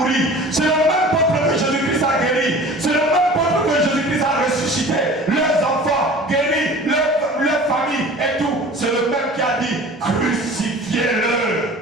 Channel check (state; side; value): normal; both; correlation 0.42